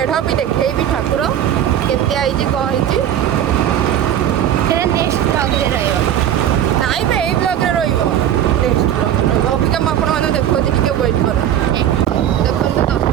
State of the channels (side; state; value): left; quieter; 10.5 dB